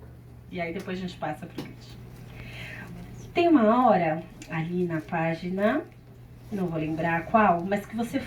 E aí depois a gente passa para o Christian. Tem uma hora ali na página, não vou lembrar qual, mas que você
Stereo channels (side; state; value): both; identical; correlation 1.00